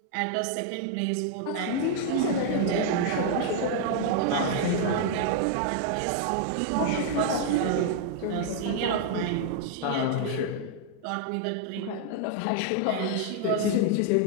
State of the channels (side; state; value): both; different; correlation 0.00